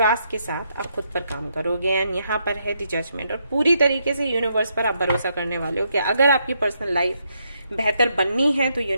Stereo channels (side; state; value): both; inverted; correlation -0.78